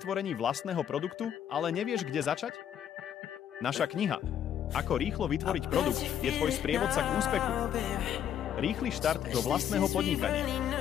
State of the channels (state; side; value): quieter; right; 9.6 dB